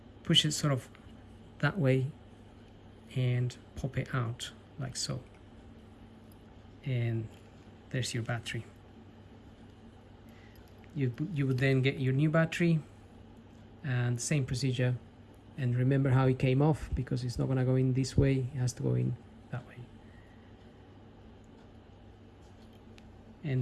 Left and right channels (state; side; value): identical; both; correlation 1.00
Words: push it sort of that way and pop it out like so, and there's your battery. You would then get your new battery and same procedure, and remember how it came off, because it's not going to go in this way, it has to go in that way,